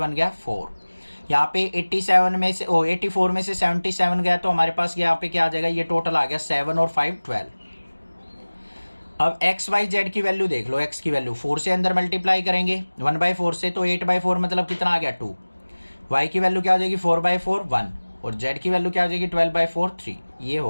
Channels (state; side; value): inverted; both; correlation -1.00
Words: गया 4। यहाँ पे 84 में से 77 गया तो हमारे पास यहाँ पे क्या आ जाएगा, ये टोटल आ गया 7 और 5 12। अब x y z की वैल्यू देख लो, x की वैल्यू 4 से अंदर मल्टीप्लाई करेंगे 1/4 से, तो 8/4 मतलब कितना आ गया 2। y की वैल्यू क्या हो जाएगी 4/4 1, और z की वैल्यू क्या हो जाएगी 12/4 3। ये